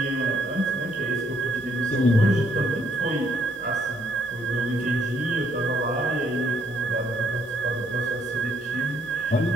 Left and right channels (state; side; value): normal; both; correlation 0.70